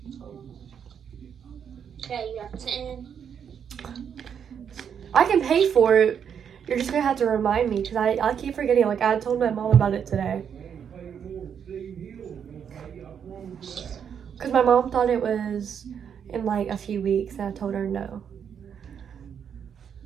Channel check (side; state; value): left; quieter; 7.8 dB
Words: Okay, you have 10. I can pay for it. You're just gonna have to remind me because I keep forgetting. Like I told my mom about it today. Because my mom thought it was in like a few weeks and I told her no.